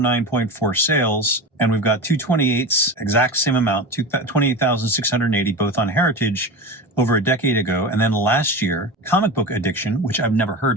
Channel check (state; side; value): normal; both; correlation 0.27